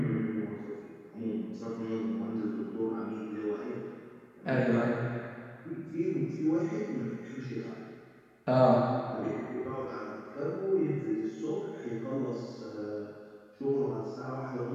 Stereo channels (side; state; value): both; identical; correlation 1.00